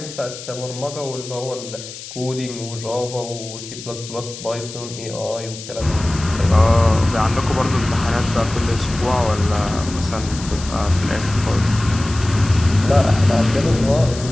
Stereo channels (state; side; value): noise; left; hiss, 13 dB below the sound